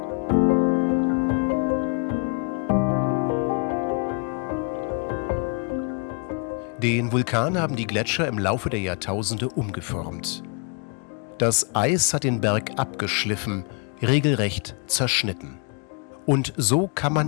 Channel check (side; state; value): right; quieter; 37.0 dB